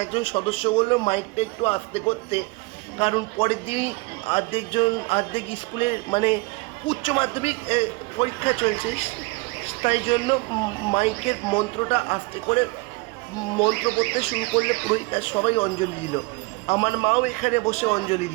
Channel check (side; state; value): left; quieter; 25.8 dB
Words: একজন সদস্য বললো মাইকটা একটু আস্তে করতে, কারণ পরের দিনই অর্ধেক স্কুলের মানে উচ্চ মাধ্যমিক পরীক্ষা চলছে, তাই জন্য মাইকের মন্ত্রটা আস্তে করে মন্ত্র পড়তে শুরু করলে পুরোহিত আর সবাই অঞ্জলি দিল। আমার মাও এখানে বসে অঞ্জলি